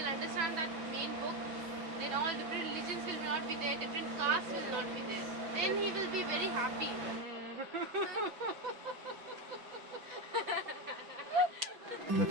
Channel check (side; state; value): left; late; 6.1 ms